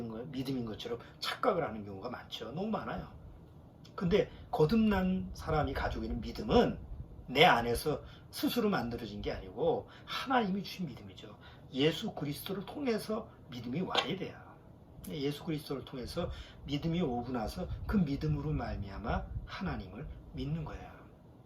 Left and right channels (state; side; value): identical; both; correlation 1.00